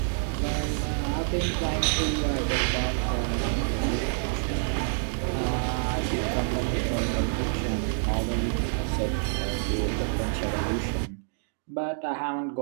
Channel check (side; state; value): left; silent; digital silence